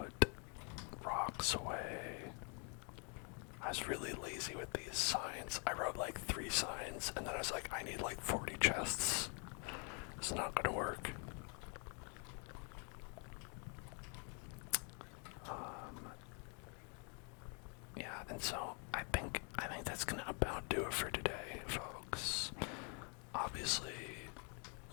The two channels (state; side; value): quieter; right; 37.8 dB